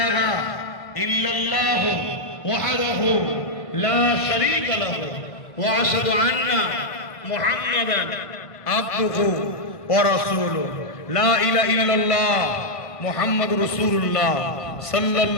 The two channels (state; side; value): late; right; 1.5 ms